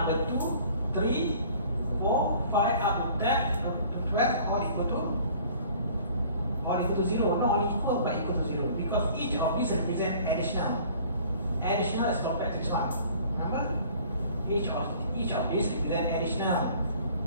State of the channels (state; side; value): inverted; both; correlation -0.51